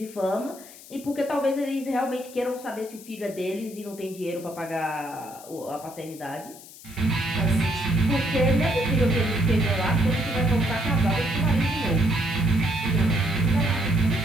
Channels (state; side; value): noise; left; hiss, 18 dB below the sound